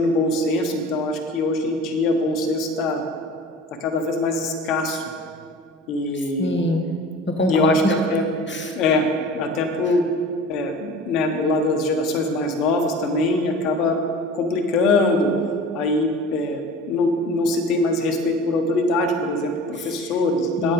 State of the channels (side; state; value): both; normal; correlation 0.40